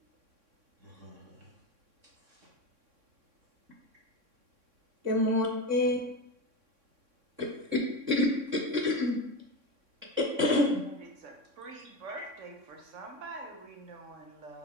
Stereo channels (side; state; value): left; late; 3.6 ms